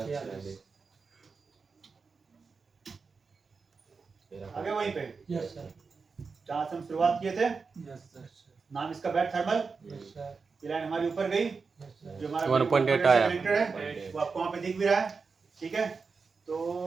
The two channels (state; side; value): quieter; left; 4.8 dB